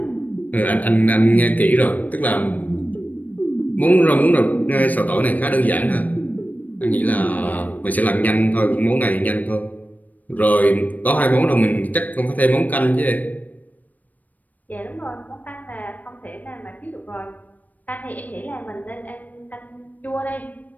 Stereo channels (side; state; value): right; late; 0.079 ms